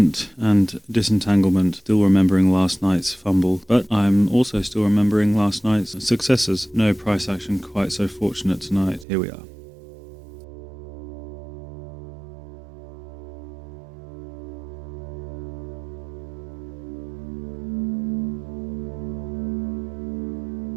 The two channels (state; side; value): drops out; left; at 9.1 s